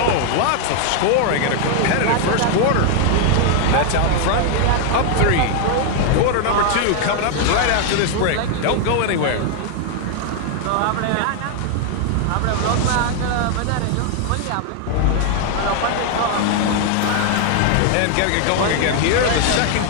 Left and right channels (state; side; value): different; both; correlation 0.00